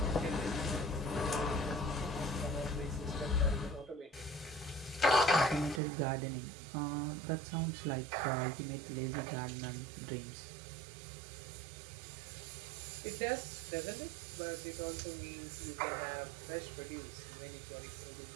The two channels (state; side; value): drops out; left; at 5.8 s